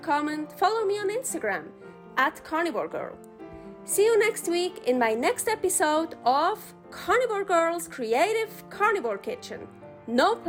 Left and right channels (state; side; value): identical; both; correlation 1.00